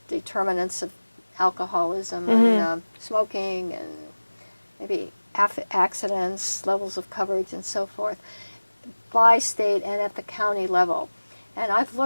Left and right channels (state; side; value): inverted; both; correlation -1.00